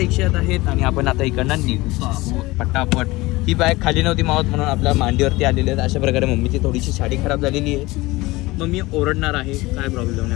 आहेत आणि आपण आता इकडनं निघतो पटापट. ही बॅग खाली नव्हती मावत म्हणून आपल्या मांडीवरती आलेली आहेत. अशा प्रकारे मम्मीची थोडीशी साडी खराब झालेली आहे. मम्मी ओरडणार आहे, काय प्रॉब्लेम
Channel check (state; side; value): quieter; right; 20.7 dB